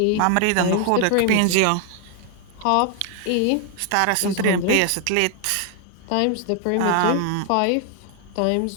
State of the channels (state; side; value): different; both; correlation 0.00